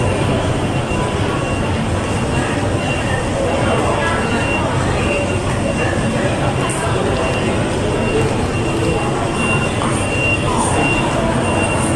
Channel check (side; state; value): both; identical; correlation 1.00